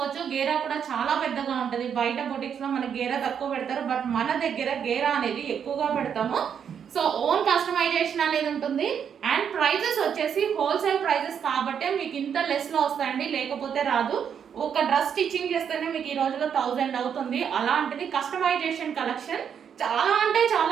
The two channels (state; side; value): quieter; left; 7.9 dB